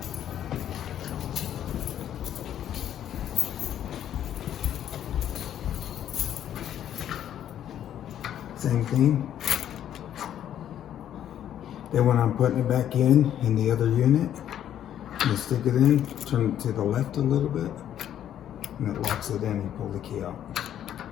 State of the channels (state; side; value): quieter; right; 10.6 dB